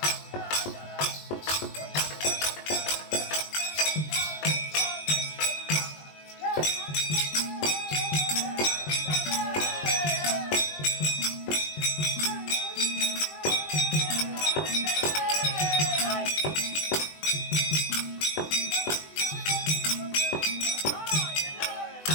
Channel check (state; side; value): late; right; 20 ms